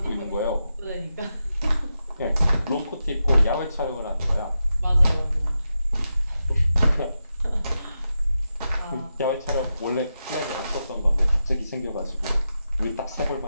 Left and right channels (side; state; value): both; inverted; correlation -0.88